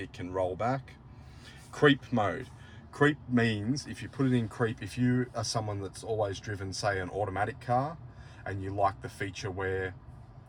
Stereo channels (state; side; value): identical; both; correlation 1.00